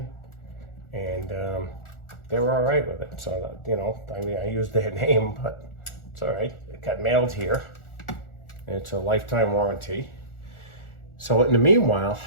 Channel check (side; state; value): right; late; 1.4 ms